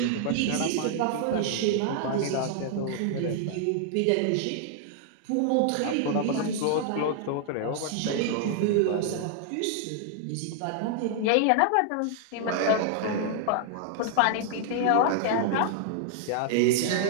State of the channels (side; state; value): both; different; correlation 0.00